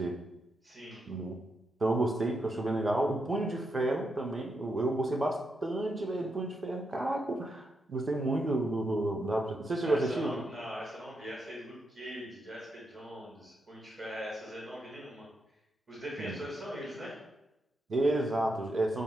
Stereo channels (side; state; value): both; normal; correlation 0.83